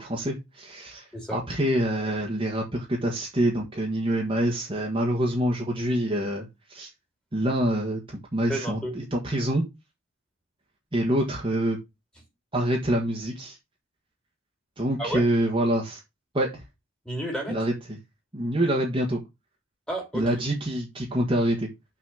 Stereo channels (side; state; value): both; normal; correlation 0.65